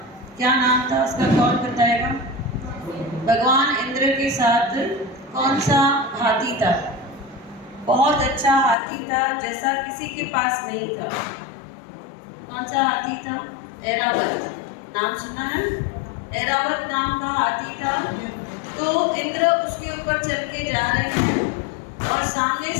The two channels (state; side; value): drops out; right; at 8.8 s